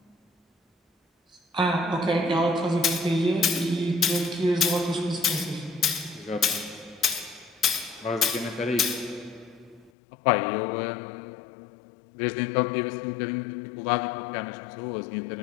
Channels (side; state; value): right; drops out; at 9.9 s